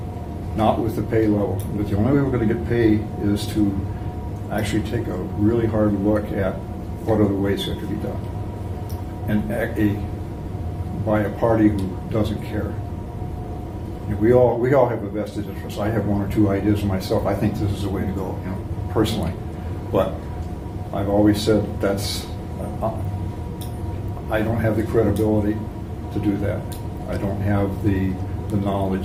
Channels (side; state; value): both; identical; correlation 1.00